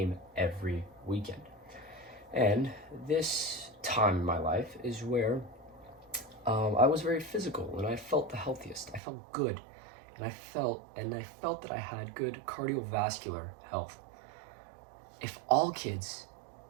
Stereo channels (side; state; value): left; drops out; at 9.0 s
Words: every weekend. And this time in my life is where I was very physical and I felt the healthiest. I felt good, and I felt that I had good cardiovascular health. If all kids